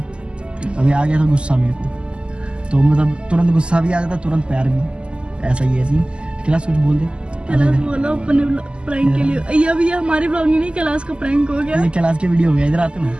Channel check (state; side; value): late; left; 0.051 ms